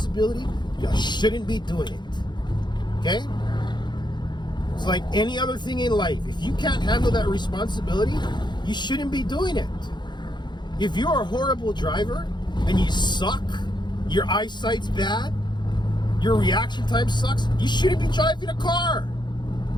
you shouldn't be doing it. Okay? It's like any other thing in life. If you can't handle that responsibility, you shouldn't be doing it. If you're a horrible driver and you suck, your eyesight's bad, your reaction time sucks, you shouldn't be driving a car.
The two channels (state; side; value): late; right; 0.21 ms